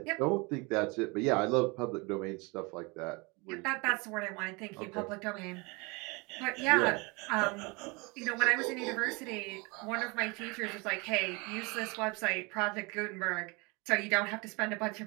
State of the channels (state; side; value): quieter; left; 27.8 dB